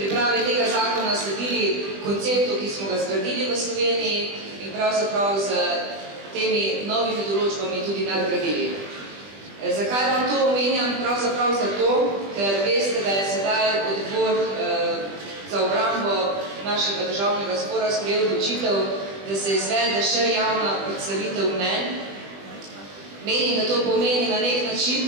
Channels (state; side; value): late; left; 20 ms